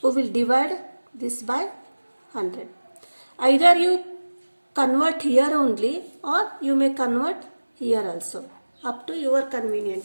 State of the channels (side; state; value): both; inverted; correlation -1.00